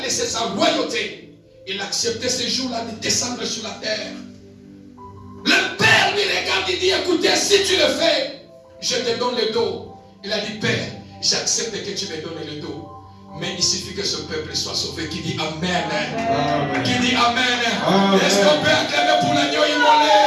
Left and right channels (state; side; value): identical; both; correlation 1.00